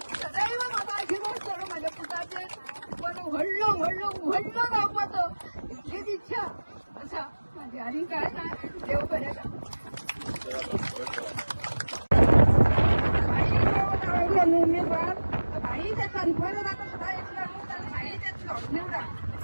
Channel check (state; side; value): inverted; both; correlation -1.00